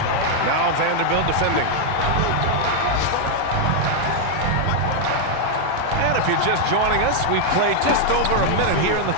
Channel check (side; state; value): both; different; correlation 0.00